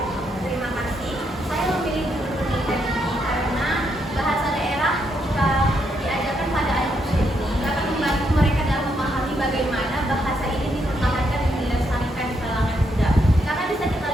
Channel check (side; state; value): both; normal; correlation 0.77